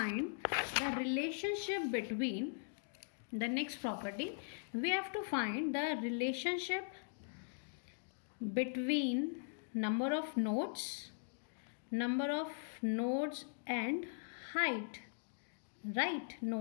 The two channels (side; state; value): right; silent; digital silence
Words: the relationship between the next property. We have to find the relationship between number of nodes and height, right?